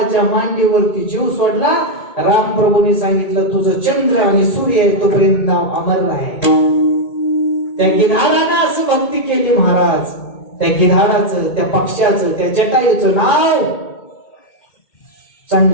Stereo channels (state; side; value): late; right; 2.2 ms